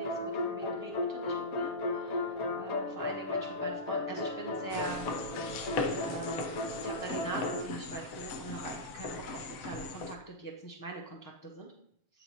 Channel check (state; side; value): late; right; 7.1 ms